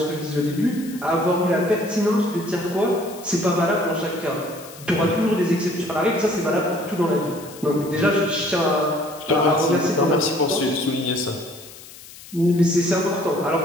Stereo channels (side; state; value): left; noise; hiss, 18 dB below the sound